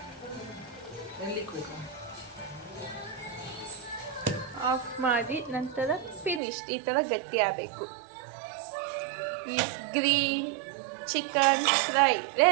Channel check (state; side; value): drops out; left; at 6.4 s